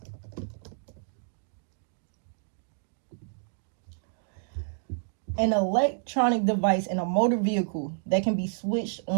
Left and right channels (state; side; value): silent; left; digital silence